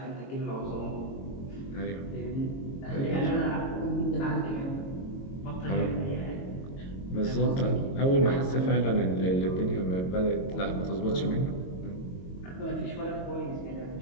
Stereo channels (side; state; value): right; late; 22 ms